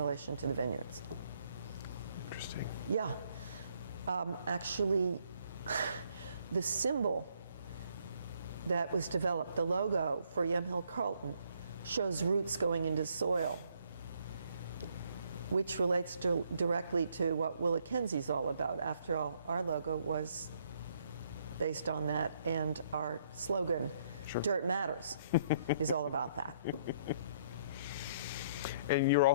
to the vineyards. Interesting. Yeah. Actually, the symbol that was developed, the logo for Yamhill Carlton, shows roots going into soil, which relates directly to what Willa Kenzie is all about. After all, our logo was based on that, and our slogan, Dirt Matters, is all about that. And you're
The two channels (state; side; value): inverted; both; correlation -0.67